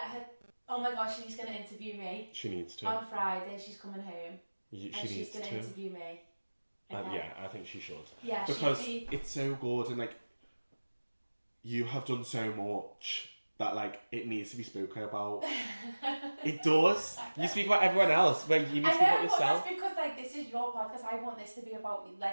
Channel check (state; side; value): inverted; both; correlation -1.00